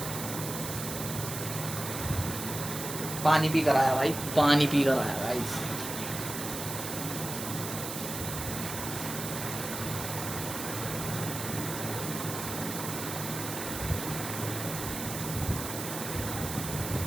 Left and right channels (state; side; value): noise; right; hiss, 6 dB below the sound